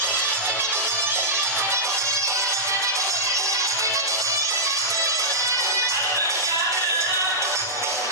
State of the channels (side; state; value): both; normal; correlation -0.11